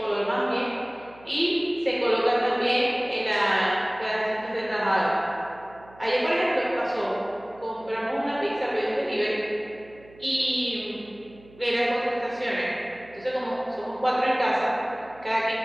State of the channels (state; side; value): noise; right; hum, 24 dB below the sound